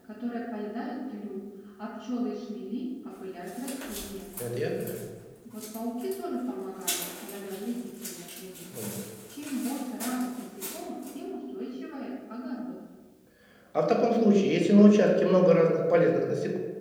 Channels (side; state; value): both; identical; correlation 1.00